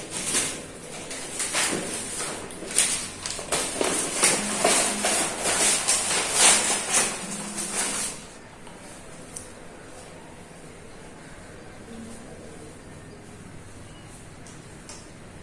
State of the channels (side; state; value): both; identical; correlation 1.00